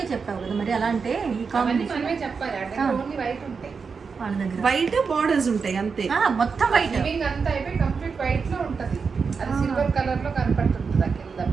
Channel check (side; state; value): left; quieter; 5.4 dB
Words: చెప్పావు కదా మరి. అలా అంటే ఈ అవన్నీ కాంబినేషన్ మనమే చెప్పాలి. అంటే ఓన్లీ వైట్ ఉంటాయి, వాళ్ళ దగ్గర వైట్ బార్డర్స్ ఉంటాయి అంతే. మొత్తం వైట్ లివింగ్ అంతా అయిపోయి కంప్లీట్ వైట్ లో ఉంటది. అది సిల్వర్ కలర్ లో కనపడుతుంది. ఆ కింద